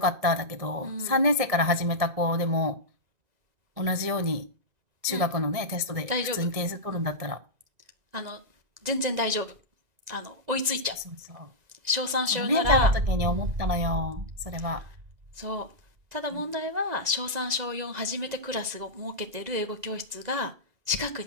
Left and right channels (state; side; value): late; left; 2.0 ms